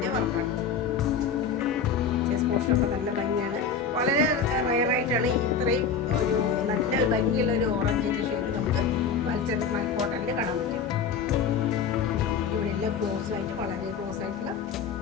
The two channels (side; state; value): right; quieter; 5.9 dB